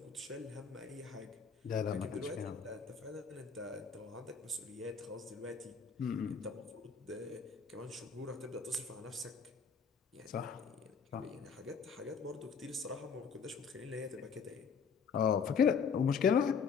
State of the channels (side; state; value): right; quieter; 6.0 dB